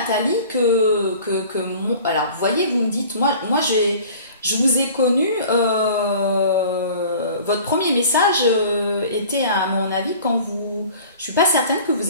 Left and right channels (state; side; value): inverted; both; correlation -0.45